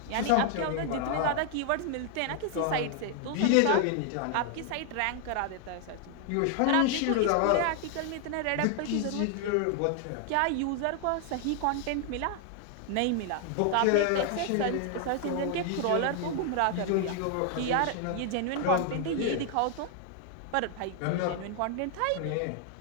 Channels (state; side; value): different; both; correlation 0.00